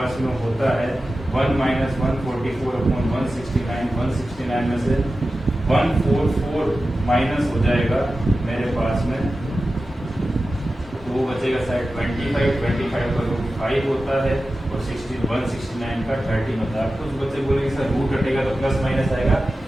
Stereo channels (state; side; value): normal; both; correlation 0.94